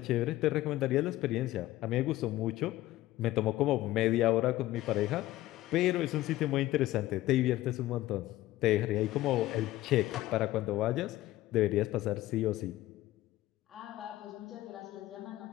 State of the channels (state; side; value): quieter; right; 16.1 dB